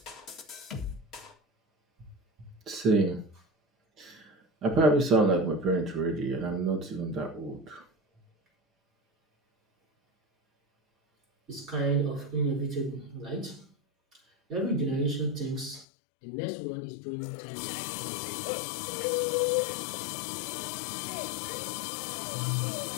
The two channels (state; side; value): drops out; right; at 15.9 s